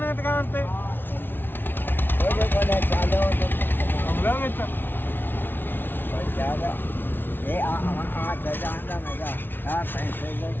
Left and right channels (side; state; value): right; late; 0.10 ms